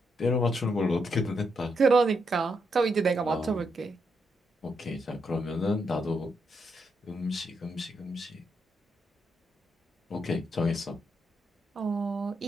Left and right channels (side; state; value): both; normal; correlation 0.80